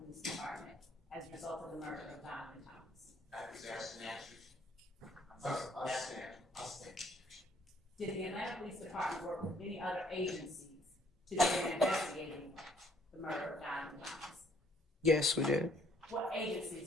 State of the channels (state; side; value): normal; both; correlation 0.63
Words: Police Department as a result of the murder of Donovan Thomas? That was asked and answered. Did the Atlanta Police Department work with any other agencies to begin investigating the murder of Donovan Thomas? Yes, we did. What